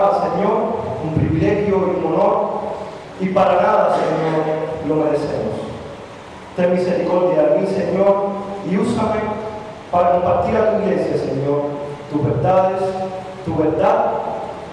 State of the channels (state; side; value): identical; both; correlation 1.00